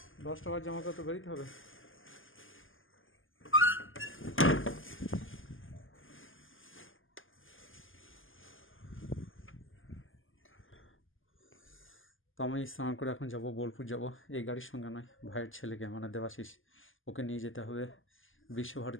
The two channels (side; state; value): right; late; 0.58 ms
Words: 10 টাকার জামা তো বেরোতে হবে। তো আমি স্নান করে এখন যাব, বোলপুর যাব। এই গাড়ির সঙ্গে নয়, ভাইয়ের ছেলেকে মানে দেবাশিস, ওকে নিয়ে যেতে হবে